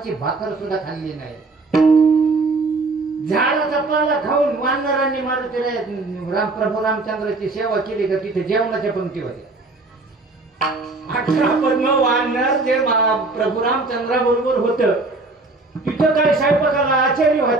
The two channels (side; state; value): left; quieter; 3.4 dB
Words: भाकर सुद्धा खाल्ली नाही. झाडाचा पाला खाऊन वानरांनी मारुतीराया प्रभू रामचंद्राची सेवा केली का तिथे जेवणाच्या पंक्ती होत्या. 18 पद्म वानर जे प्रभू रामचंद्रा बरोबर होत तिथं काय स्वयंपाकाला आचार्य